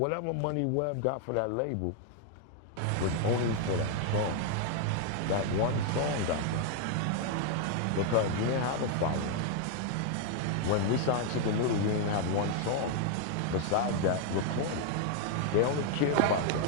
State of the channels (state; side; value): different; both; correlation 0.01